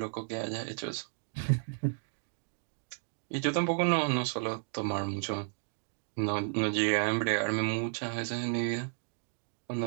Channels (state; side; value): silent; left; 56 dB below the other